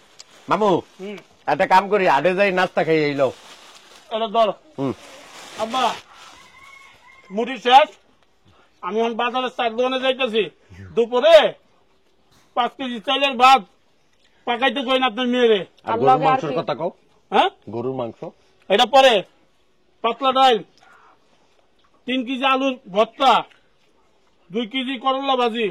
মামু একটা কাম করি, আডে যাই নাস্তা খাই এইলো। এটা ধর। হুম আব্বা মুড়ি শেষ, আমি এখন বাজারের চার দোকানে যাইতেছি, দুপুরে 5 কেজি চাইলের ভাত পাকাইতে কই না আপনার মেয়েরে। আর গরুর মাংসের কথা কও। হ্যাঁ গরুর মাংস এটা পরে, পাতলা ডাল, 3 কেজি আলুর ভর্তা, 2 কেজি করলা ভাজি,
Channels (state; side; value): identical; both; correlation 1.00